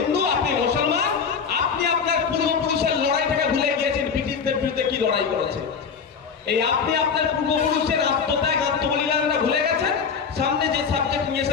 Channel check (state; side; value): quieter; right; 6.1 dB